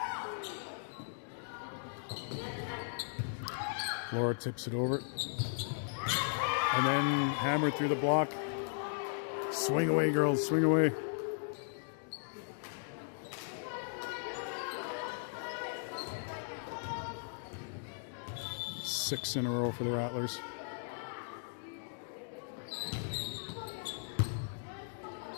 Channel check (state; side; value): silent; right; digital silence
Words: Laura tips it over. And then hammered through the block. Swing away, girls. Swing away. Six in a row for the Rattlers.